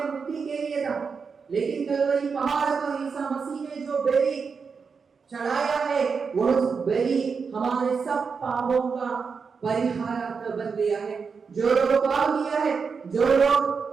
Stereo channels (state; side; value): quieter; left; 5.5 dB